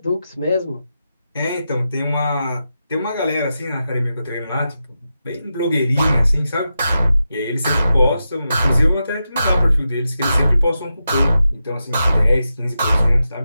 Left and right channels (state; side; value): inverted; both; correlation -0.88